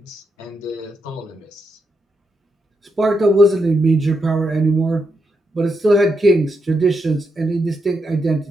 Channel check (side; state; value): both; normal; correlation 0.83